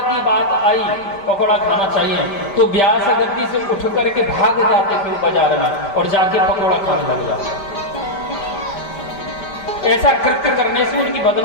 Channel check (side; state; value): right; late; 5.1 ms